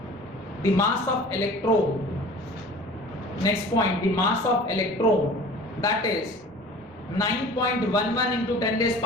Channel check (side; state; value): both; normal; correlation 0.43